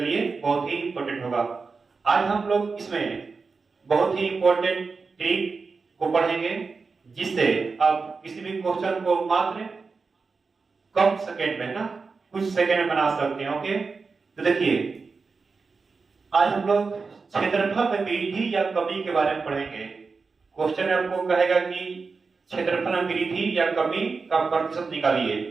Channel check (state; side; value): quieter; left; 4.5 dB